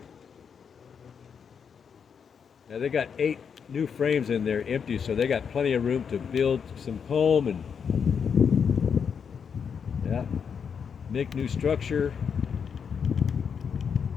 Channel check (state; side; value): quieter; right; 6.8 dB